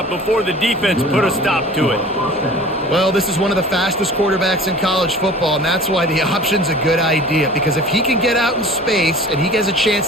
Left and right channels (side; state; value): both; normal; correlation 0.43